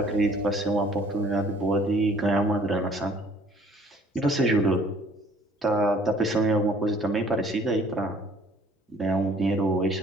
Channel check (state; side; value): normal; both; correlation 0.57